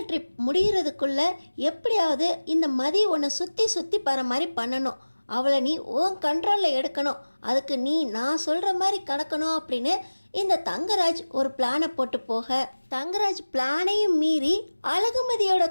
ட்ரிப் முடிகிறதுக்குள்ள எப்படியாவது இந்த மதி உன்னை சுற்றி சுற்றி போகிற மாதிரி பண்ணணும். அவளை நீ உன் கண்ட்ரோலில் எடுக்கணும். அதுக்கு நீ நான் சொல்கிற மாதிரி கடக்கணும் அப்படின்னு இந்த தங்கராஜ் ஒரு பிளானை போட்டு போக, தங்கராஜ் பிளானையும் மீறி அழகுமதியோட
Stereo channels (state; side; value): inverted; both; correlation -1.00